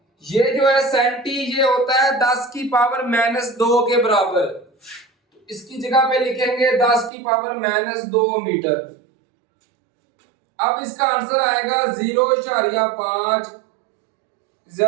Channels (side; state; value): left; drops out; at 7.1 s